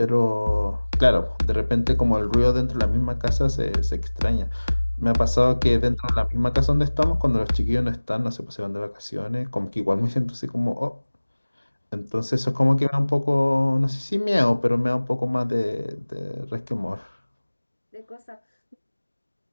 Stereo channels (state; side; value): inverted; both; correlation -1.00